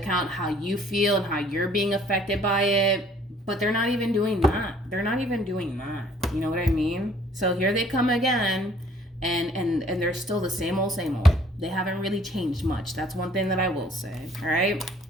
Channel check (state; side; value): normal; both; correlation 0.58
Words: how you feel and how you're being affected by it. But they're not even doing that. They're not even doing that. You know what I mean? So here they come again, and they're still the same old, same old. They haven't really changed much. That's one thing that I will say. All right?